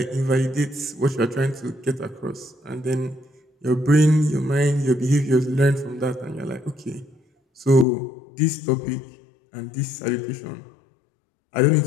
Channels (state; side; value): drops out; right; at 7.9 s